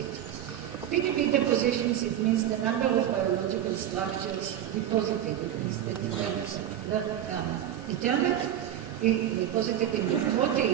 PDB depositions, it means the number of biological structures deposited. Determined, deposited in the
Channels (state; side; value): quieter; left; 11.0 dB